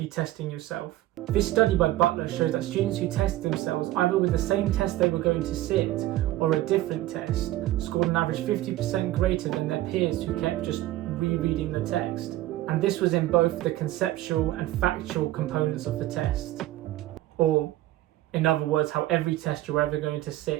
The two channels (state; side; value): quieter; left; 15.6 dB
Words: testing yourself. This study by Butler shows that students who test themselves either with the same test they were going to sit or a different test scored on average 50% greater than their peers who kept just rereading the text. And this was in both the conceptual and factual components of the test, or in other words, how every test you're ever going to